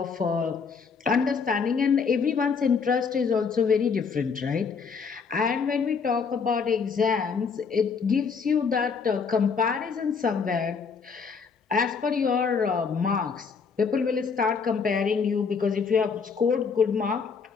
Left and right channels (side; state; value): right; quieter; 5.6 dB